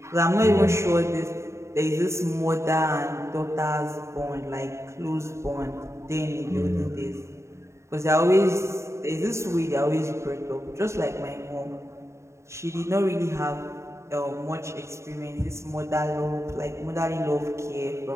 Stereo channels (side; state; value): left; late; 0.14 ms